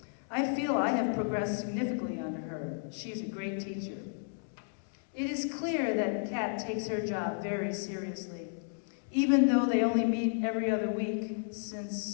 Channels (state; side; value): silent; right; digital silence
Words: I feel I have progressed significantly under her. She's a great teacher. It is clear that Kat takes her job very seriously. Even though they only meet every other week